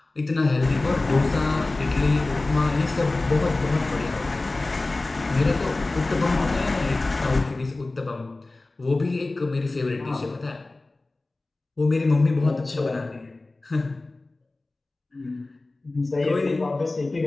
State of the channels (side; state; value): right; quieter; 3.1 dB